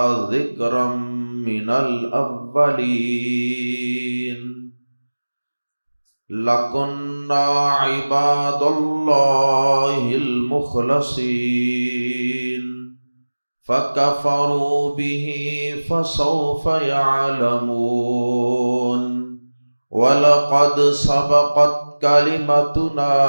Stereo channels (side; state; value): both; inverted; correlation -1.00